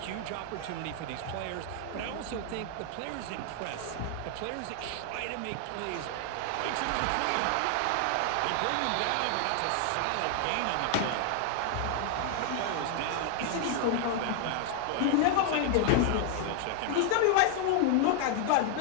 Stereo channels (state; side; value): different; both; correlation 0.00